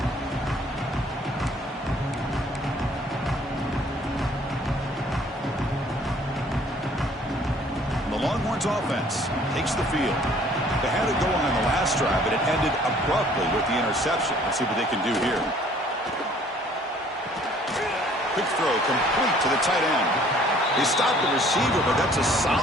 Offense takes the field. They had it going on the last drive, but it ended abruptly with the interception. Let's see what they can do here. Quick throw complete to the tight end. They stopped the receiver, but that's a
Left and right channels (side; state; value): both; normal; correlation 0.57